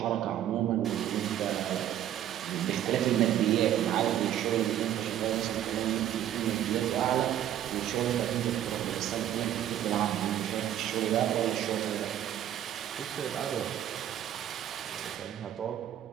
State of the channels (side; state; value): left; quieter; 11.4 dB